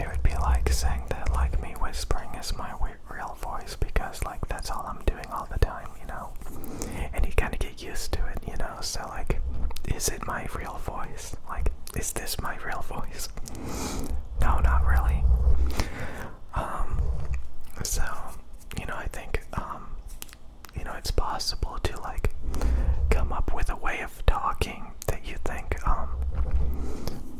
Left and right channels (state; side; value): identical; both; correlation 1.00